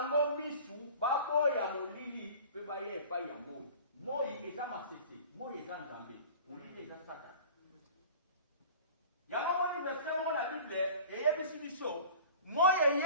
misu baboya molili pe baya epai ya moi. Moi eza masese, moi eza Nzambe, molili eza Satan. Yango moni verset mo na Bible eyebisi biso moye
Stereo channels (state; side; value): inverted; both; correlation -0.42